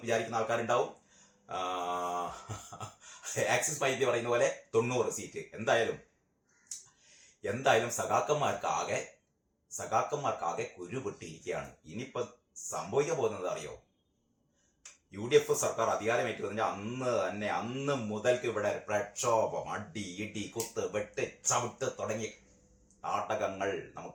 വിചാരിക്കുന്ന ആൾക്കാരുണ്ടാവും. ആക്സിസ് മൈ ഇന്ത്യ പറയുന്ന പോലെ 90 സീറ്റ്. എന്തായാലും സഖാക്കന്മാർക്കാകെ കുരുപൊട്ടിയിരിക്കുകയാണ്. ഇനിയിപ്പോ സംഭവിക്കാൻ പോകുന്നത് അറിയോ? UDF സർക്കാർ അധികാരമേറ്റുന്നതിന്റെ അന്ന് മുതൽക്ക് ഇവിടെ പ്രക്ഷോഭം, അടി, ഇടി, കുത്ത്, വെട്ട്, ചവിട്ട് തുടങ്ങിയ നാടകങ്ങൾ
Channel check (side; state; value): both; identical; correlation 1.00